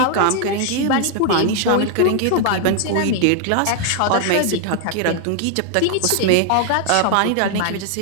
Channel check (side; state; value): both; different; correlation 0.00